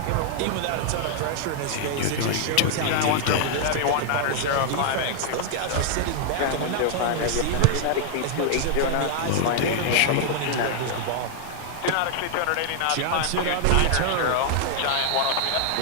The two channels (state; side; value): different; both; correlation -0.01